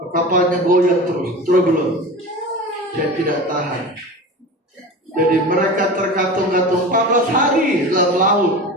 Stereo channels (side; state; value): both; normal; correlation 0.31